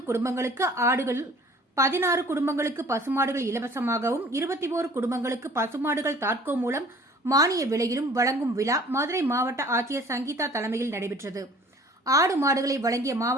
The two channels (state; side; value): normal; both; correlation 0.50